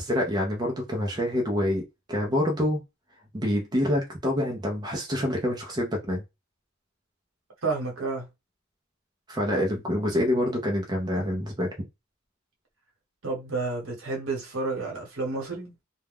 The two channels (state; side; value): normal; both; correlation 0.60